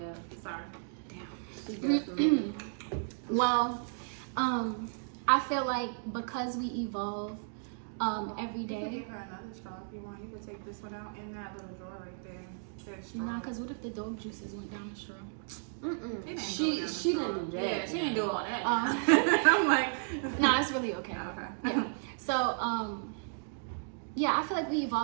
Sorry. She definitely. Well, I feel like because we evolve every You could day. give her another straw if you want. You could take this one out in that little drawer right there. That straw. Nah, because what if the dog juices went down the straw? She didn't do that. Yeah, she didn't do all that. I'm like, No, it's really okay. okay. Yeah. So, yeah, I feel like we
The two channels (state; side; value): silent; left; digital silence